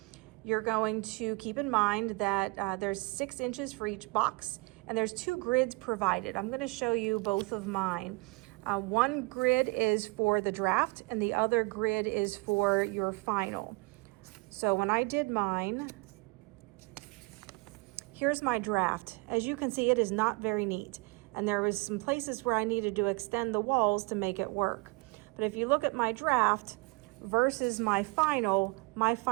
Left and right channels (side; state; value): left; quieter; 26.5 dB